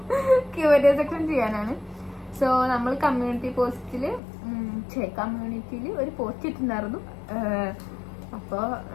Q&A സെക്ഷൻ ചെയ്യാനാണ്. സോ നമ്മൾ കമ്മ്യൂണിറ്റിയിൽ ഒരു പോസ്റ്റ് ഇട്ടിട്ടുണ്ടായിരുന്നു. അപ്പൊ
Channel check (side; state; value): right; drops out; at 4.2 s